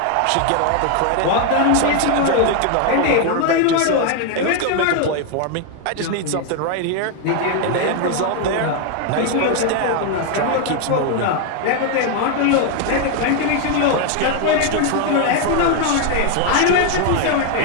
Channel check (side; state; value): both; different; correlation 0.01